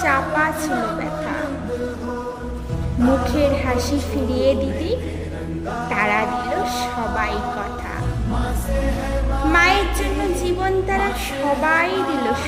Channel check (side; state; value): both; identical; correlation 1.00